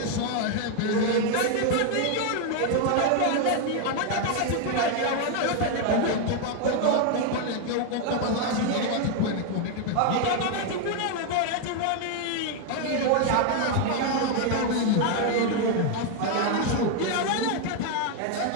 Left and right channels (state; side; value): different; both; correlation 0.00